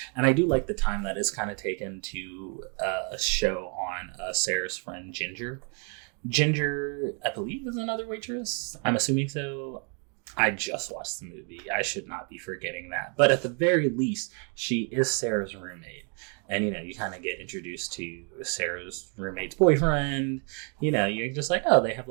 and I do like the time that is kind of taken to show on Sarah's friend Ginger. Ginger, I believe, is another waitress. I'm assuming so. I just watched the movie. I should not be forgetting that. But at the very least, she is Sarah's roommate. And, you know, you kind of get introduced to Sarah's roommate's boyfriend. You know, you're just like, oh, they have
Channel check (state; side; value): quieter; left; 39.2 dB